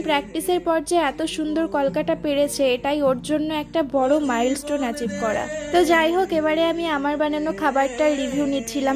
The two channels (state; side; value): identical; both; correlation 1.00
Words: প্র্যাকটিসের পর যে এত সুন্দর কলকাটা পেরেছে, এটাই ওর জন্য একটা বড় মাইলস্টোন অ্যাচিভ করা। তো যাই হোক, এবারে আমি আমার বানানো খাবারটার রিভিউ